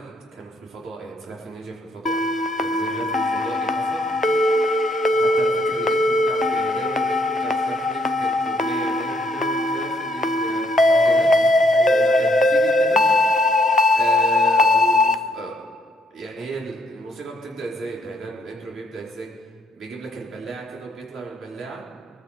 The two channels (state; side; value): normal; both; correlation 0.71